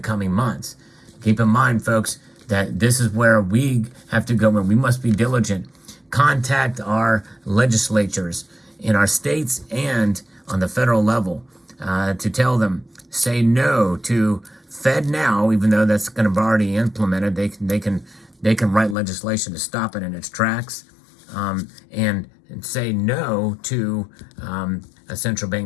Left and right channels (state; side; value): drops out; right; at 18.9 s